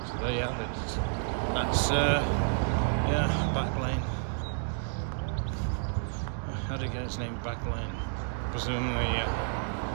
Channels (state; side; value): silent; left; digital silence